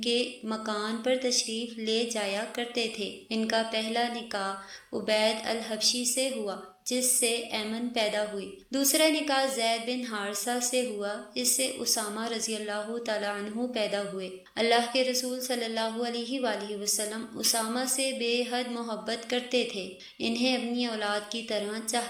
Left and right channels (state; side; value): identical; both; correlation 1.00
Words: کے مکان پر تشریف لے جایا کرتے تھے۔ ان کا پہلا نکاح عبید الحبشی سے ہوا، جس سے ایمن پیدا ہوئی۔ دوسرا نکاح زید بن حارثہ سے ہوا، اس سے اسامہ رضی اللہ تعالیٰ عنہ پیدا ہوئے۔ اللہ کے رسول صلی اللہ علیہ وآلہ وسلم اسامہ سے بے حد محبت کرتے تھے، انہیں اپنی اولاد کی طرح